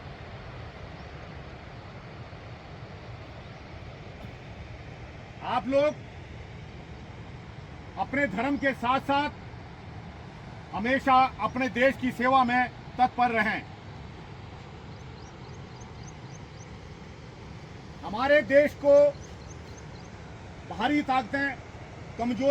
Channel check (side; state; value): both; identical; correlation 1.00